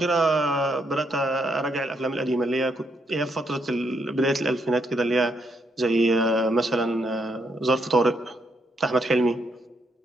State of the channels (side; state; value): both; normal; correlation 0.76